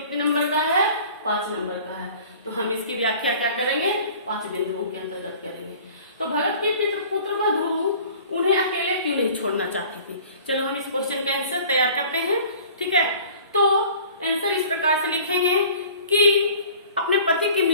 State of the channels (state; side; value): inverted; both; correlation -0.47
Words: नंबर का है, 5 नंबर का है, तो हम इसकी व्याख्या क्या करेंगे, 5 बिंदुओं के अंतर्गत करेंगे। तो भगत की पुत्र वधु उन्हें अकेले क्यों नहीं छोड़ना चाहती थी। चलो हम इस क्वेश्चन का आंसर तैयार करते हैं। ठीक है, तो आंसर इस प्रकार से लिखेंगे कि अपने पति की